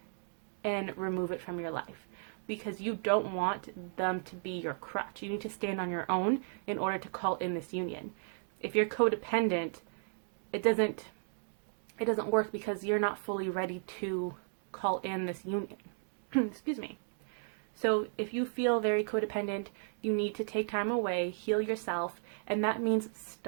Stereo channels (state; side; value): silent; left; digital silence